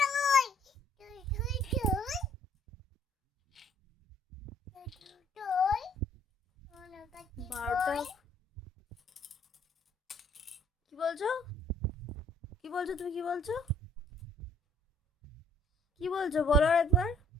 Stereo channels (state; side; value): normal; both; correlation 0.61